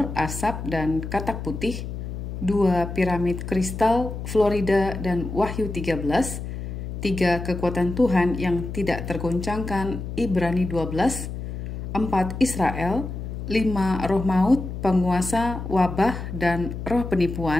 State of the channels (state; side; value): noise; left; hum, 7 dB below the sound